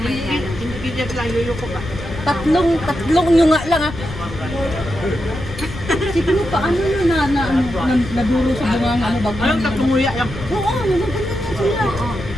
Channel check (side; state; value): left; noise; rumble, 10 dB below the sound